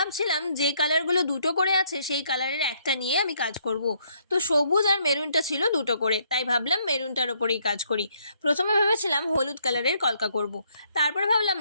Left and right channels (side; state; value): both; inverted; correlation -0.69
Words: যে কালারগুলো দুটো করে আছে সেই কালারের একটা নিয়ে আমি কাজ করব। তো সবুজ আর মেরুনটা ছিল দুটো করে, তাই ভাবলাম মেরুনটার ওপরেই কাজ করি। প্রথমে ভেবেছিলাম হলুদ কালারের কলকা করব, তারপর ভাবলাম